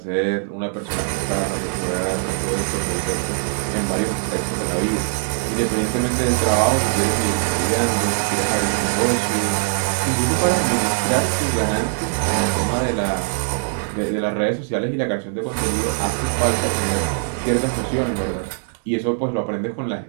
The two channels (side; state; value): left; silent; digital silence